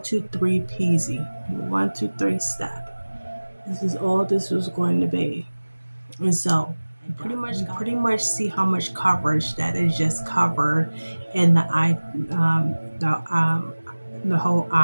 2, 3 peasy, 1, 2, 3 step. This is all this was going to be. And so you pretty much see how much coverage that is just covered in the eye, the whole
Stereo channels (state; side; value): inverted; both; correlation -1.00